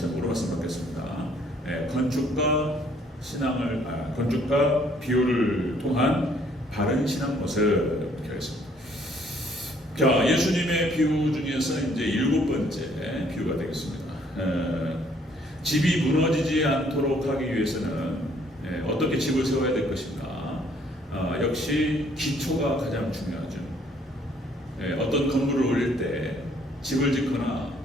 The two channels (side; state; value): both; normal; correlation 0.64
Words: 말씀드리겠습니다. 네, 건축과 비유를 통한 바른 신앙 모습 이렇게 하겠습니다. 자, 예수님의 비유 중에서 이제 7번째 비유가 되겠습니다. 집이 무너지지 않도록 하기 위해서는 어떻게 집을 세워야 될 것인가? 역시 기초가 가장 중요하죠. 어떤 건물을 올릴 때, 집을 짓거나